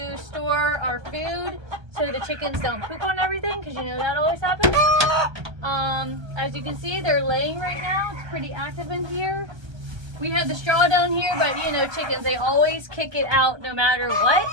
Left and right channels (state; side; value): late; left; 1.3 ms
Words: store our food so the chickens don't poop on everything, because you know that always happens. As you can see, they're laying right now. It's pretty active in here. We have the straw down here, but you know chickens, they always kick it out no matter